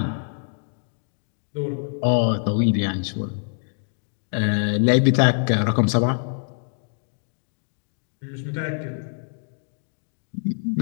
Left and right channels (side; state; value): right; silent; digital silence